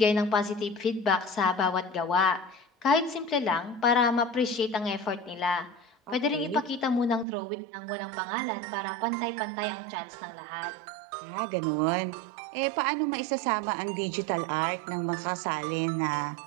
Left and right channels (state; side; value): drops out; left; at 7.2 s